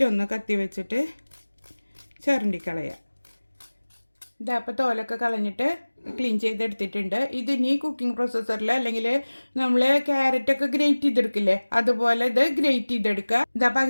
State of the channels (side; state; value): both; inverted; correlation -1.00